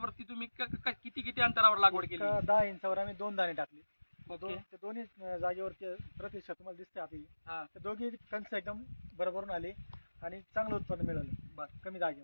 तुम्ही किती अंतरावर लागवड केली? 10 इंचावर आम्ही 2 दाणे टाकले. ओके. ते दोन्ही जागेवरती प्रतिशत तुम्हाला दिसते आपली. हा. तर दोघी कणस एकदम बरोबरून आले आणि चांगलं उत्पन्न मिळालं. बरं. कमी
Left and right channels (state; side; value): inverted; both; correlation -1.00